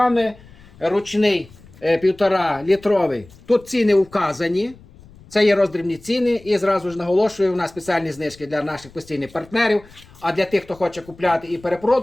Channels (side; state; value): left; noise; rumble, 24 dB below the sound